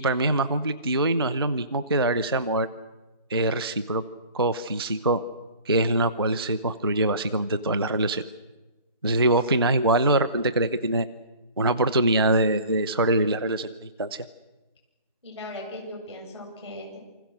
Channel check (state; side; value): inverted; both; correlation -0.45